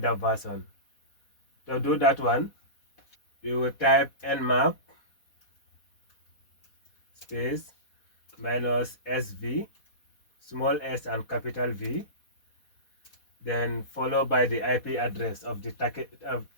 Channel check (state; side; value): late; right; 4.2 ms